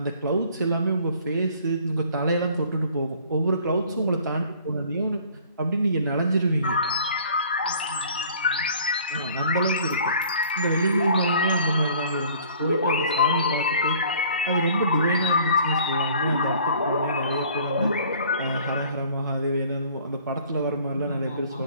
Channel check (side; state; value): both; inverted; correlation -0.53